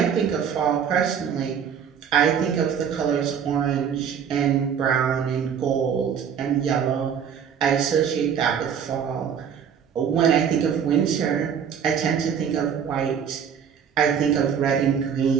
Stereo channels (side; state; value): left; quieter; 7.8 dB